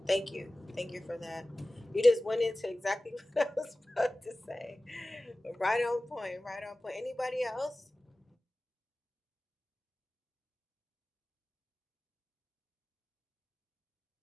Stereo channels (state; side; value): normal; both; correlation 0.97